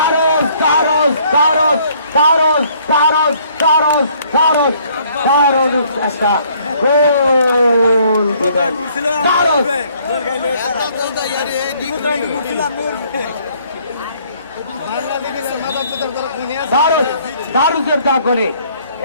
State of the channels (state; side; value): inverted; both; correlation -0.62